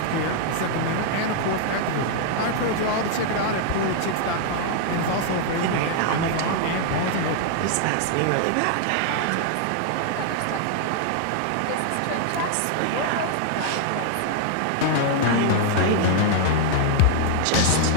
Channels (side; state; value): both; different; correlation -0.01